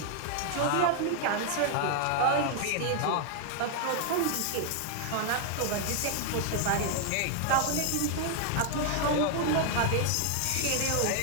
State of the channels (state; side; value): different; both; correlation 0.00